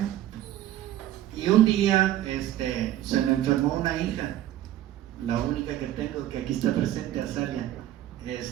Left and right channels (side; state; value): left; quieter; 13.1 dB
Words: Y un día se me enfermó una hija, la única que tengo, que aquí está presente, Azalia.